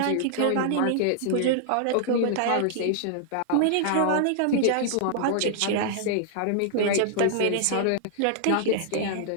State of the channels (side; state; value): both; different; correlation -0.01